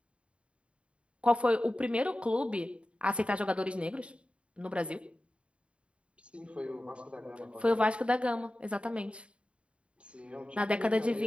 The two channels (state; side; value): late; left; 0.059 ms